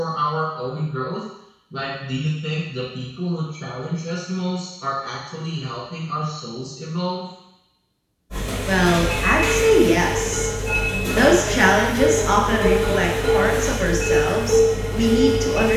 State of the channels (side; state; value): both; identical; correlation 1.00